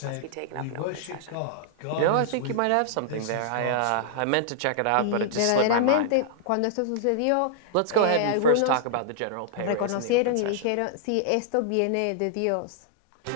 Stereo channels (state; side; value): different; both; correlation -0.01